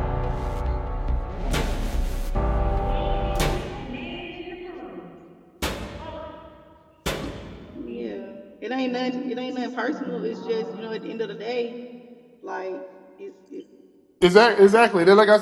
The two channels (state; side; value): identical; both; correlation 1.00